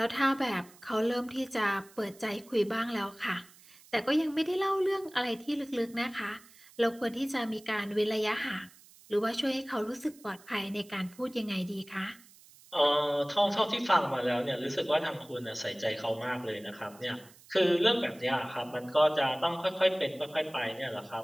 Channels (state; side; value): noise; right; hiss, 24 dB below the sound